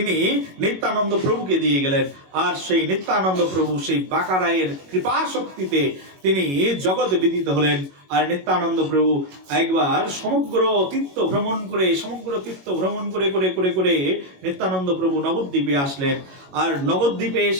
নিত্যানন্দ প্রভুকে দিয়ে গেলেন। আর সেই নিত্যানন্দ প্রভু সেই বাঁকারায়ের কৃপা শক্তিতে তিনি জগৎ বিদিত হলেন। আর নিত্যানন্দ প্রভু একবার সমগ্র তীর্থ ভ্রমণ করে করে করে করে নিত্যানন্দ প্রভু নবদ্বীপে আসলেন। আর নবদ্বীপে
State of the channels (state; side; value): late; left; 21 ms